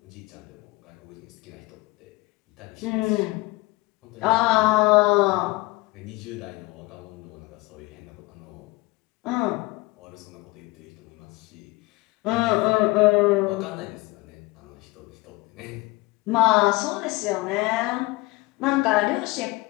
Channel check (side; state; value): right; quieter; 22.1 dB